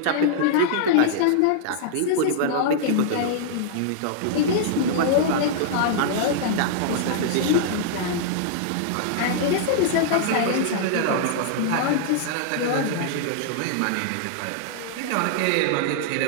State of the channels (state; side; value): different; both; correlation -0.01